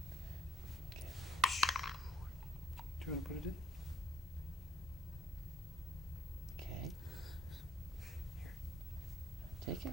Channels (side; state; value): both; normal; correlation 0.66